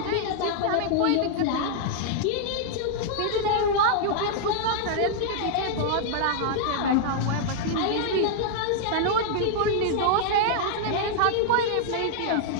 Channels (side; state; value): both; different; correlation -0.01